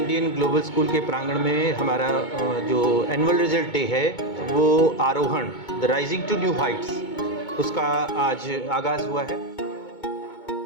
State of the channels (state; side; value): late; right; 2.2 ms